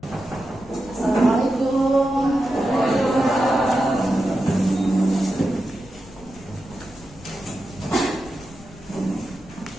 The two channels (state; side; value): noise; left; rumble, 20 dB below the sound